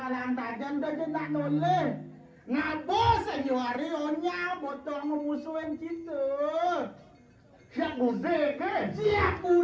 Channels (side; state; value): both; identical; correlation 1.00